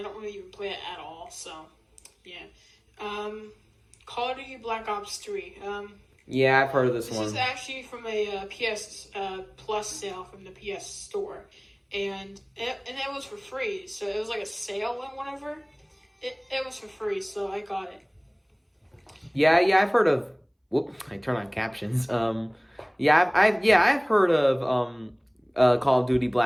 don't really even play it at all. So yeah. Call of Duty Black Ops 3. Yeah, I've heard of this one. This is actually from a PS Plus sale from the PS Store. And it was for free, so it was like a sale and whatever. It was for free, so I got it. Yeah, I've heard of. Whoop! I turn on captions. I've heard of Call of Duty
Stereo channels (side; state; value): both; identical; correlation 1.00